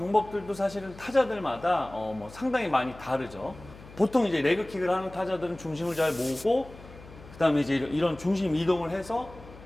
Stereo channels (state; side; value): noise; left; hum, 19 dB below the sound